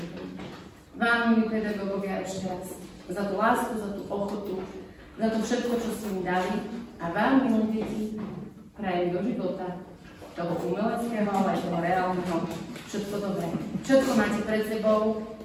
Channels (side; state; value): both; identical; correlation 1.00